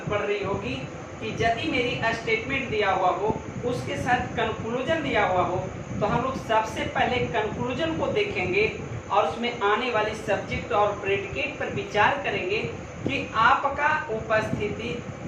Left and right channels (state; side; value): identical; both; correlation 1.00